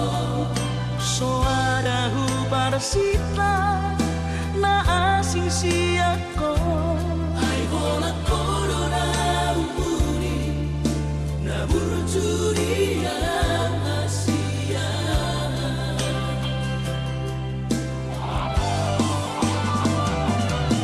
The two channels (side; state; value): both; identical; correlation 1.00